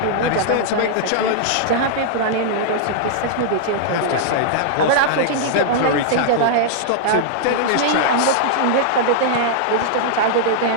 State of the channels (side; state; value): both; different; correlation -0.01